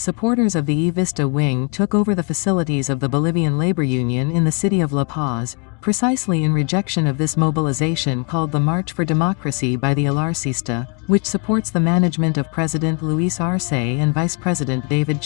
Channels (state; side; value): quieter; right; 34.9 dB